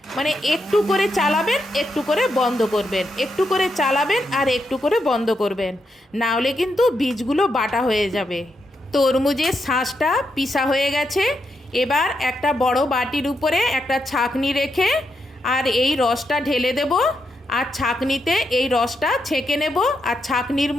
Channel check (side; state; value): both; normal; correlation 0.82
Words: মানে একটু করে চালাবেন, একটু করে বন্ধ করবেন, একটু করে চালাবেন আর একটু করে বন্ধ করবেন, না হলে কিন্তু বীজগুলো বাটা হয়ে যাবে। তরমুজের শাঁসটা পিষা হয়ে গেছে। এবার একটা বড় বাটির উপরে একটা ছাঁকনি রেখে আর এই রসটা ঢেলে দেব, আর ছাঁকনিতে এই রসটা ছেঁকে নেব, আর ছাঁকনির